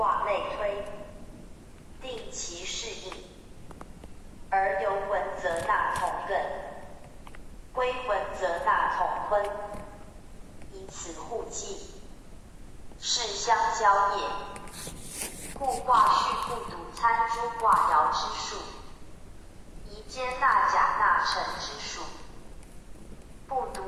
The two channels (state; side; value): identical; both; correlation 1.00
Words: 类推，定其适应。而游文则纳同艮，归文则纳同坤，以此互济，是相交也。故卦序不独参诸卦爻之数，宜兼纳甲纳辰之数，不